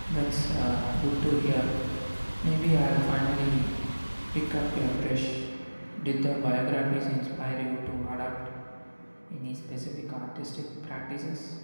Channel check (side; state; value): both; inverted; correlation -1.00